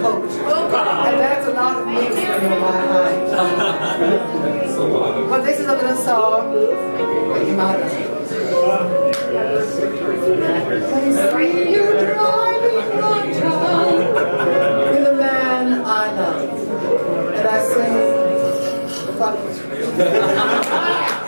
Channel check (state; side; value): inverted; both; correlation -1.00